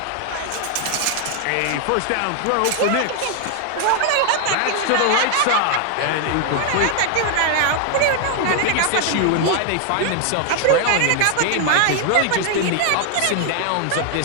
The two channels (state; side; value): different; both; correlation 0.00